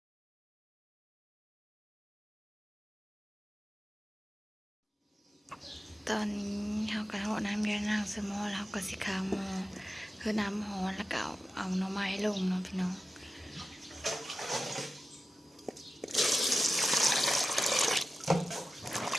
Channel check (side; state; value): both; normal; correlation 0.94